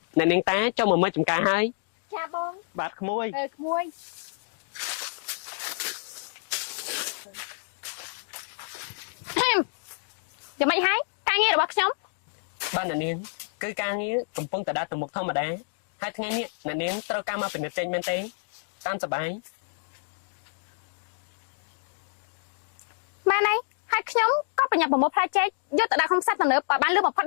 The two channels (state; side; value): silent; right; digital silence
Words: អ្នកនាងតាចង់មកមើលចំការហើយ ចាបង បាទក្មួយ ក្មួយយ៉ាងម៉េចហើយការងាររបស់ខ្ញុំ បាទអ្នកនាងគឺការងារកំពុងតែដើរទៅមុខធម្មតាហើយថ្ងៃនេះអ្នកនាងត្រូវការមកពិនិត្យចេញមែនទេតាមសប្បាយ បានហើយខ្ញុំក៏ប្រញាប់ប្រមូលផ្លែចេកយកទៅដាក់ក្នុងផ្សារទំនើបឲ្យបានលឿនបំផុត